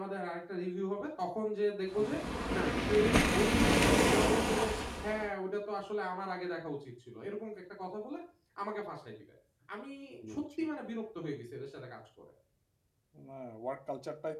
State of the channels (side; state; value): both; identical; correlation 1.00